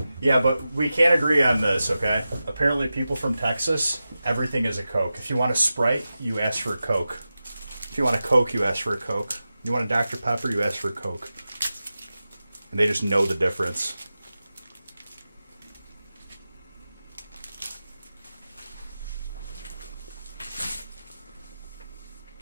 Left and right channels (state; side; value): inverted; both; correlation -0.93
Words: Yeah, but we can't agree on this, okay? Apparently, people from Texas, everything is a Coke. If you want a Sprite, you ask for a Coke. If you want a Coke, you ask for a Coke. You want a Dr. Pepper, you ask for a Coke. And they just know the difference.